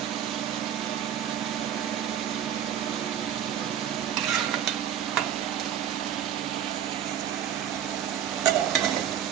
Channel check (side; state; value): left; quieter; 9.8 dB